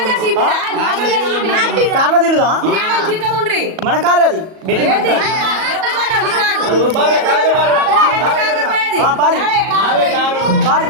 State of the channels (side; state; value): left; late; 37 ms